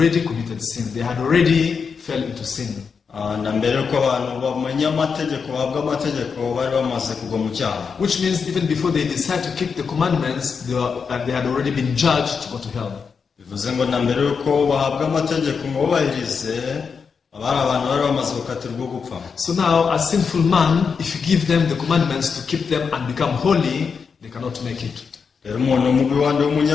committed sin. They had already fell into sin. Na mbere uko abantu bamenya amategeko bahabwa amategeko bari bamaze kugwa mu cyaha. Which means even before they decide to keep the commandments, they had already been judged to go to hell. Bivuze ngo na mbere uko bahabwa amategeko ngo bubahirize abari abantu bari bamaze gukatirwa gupfa. So now a sinful man, if you give them the commandments to keep them and become holy, they cannot make it. Rero umuntu mubi wandi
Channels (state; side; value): quieter; right; 5.8 dB